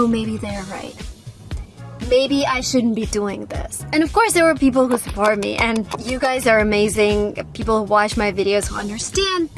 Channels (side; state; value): both; identical; correlation 1.00